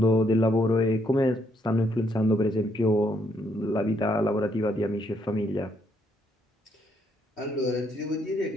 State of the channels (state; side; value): normal; both; correlation 0.73